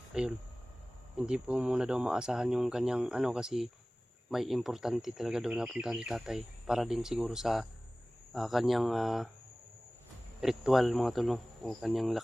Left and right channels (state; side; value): normal; both; correlation 0.98